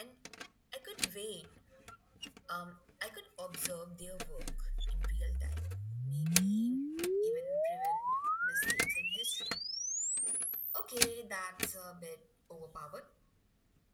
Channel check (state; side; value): identical; both; correlation 1.00